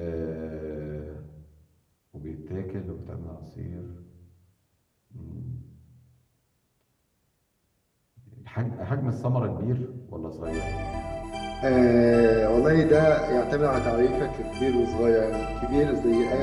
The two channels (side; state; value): both; identical; correlation 1.00